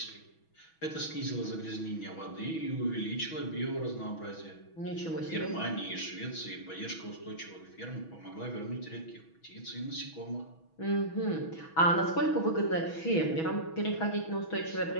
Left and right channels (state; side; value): late; right; 6.2 ms